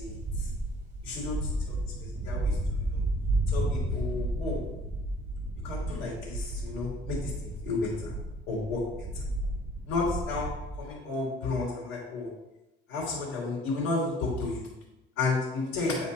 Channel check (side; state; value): both; normal; correlation 0.54